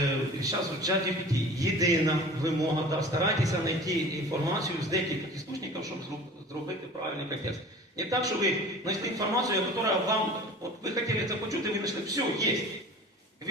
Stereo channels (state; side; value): normal; both; correlation 0.41